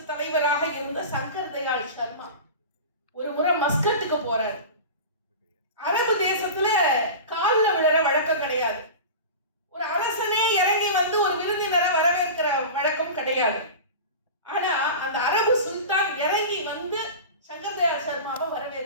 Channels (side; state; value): both; inverted; correlation -0.30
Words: தலைவராக இருந்த சங்கர் தயாள் சர்மா ஒரு முறை மஸ்கட்டுக்கு போறாரு. அரபு தேசத்துல கால்ல விழற வழக்கம் கிடையாது. ஒரு அரசனே இறங்கி வந்து ஒரு விருந்தினரை வரவேற்கிற வழக்கம் கிடையாது. ஆனா அந்த அரபு சுல்தான் இறங்கி வந்து சங்கர் தயாள் சர்மாவை